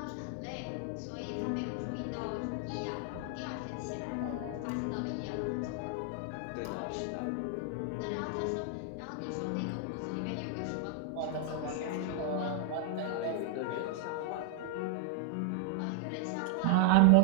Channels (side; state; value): both; different; correlation 0.00